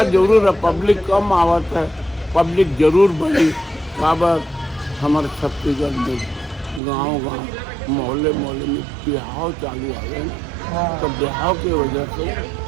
जरूर है, पब्लिक कम आवत है, पब्लिक जरूर बढ़ी। काबर हमारे छत्तीसगढ़ में गांव मोहल्ले में बिहाव चालू आ गए ना, तो बिहाव की वजह से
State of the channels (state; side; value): drops out; left; at 6.8 s